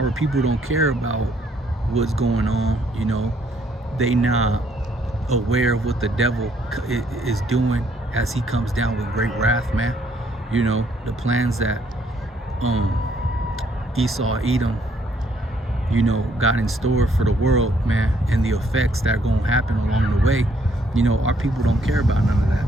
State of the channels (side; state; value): both; normal; correlation 0.68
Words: people don't care about what's going on, you know. They not aware of what the devil is doing as he comes down with great wrath, man. You know, the plans that Esau Edom, you know, got in store for the world, man, and the effects that are going to happen along the way. You know, our people don't care about none of that,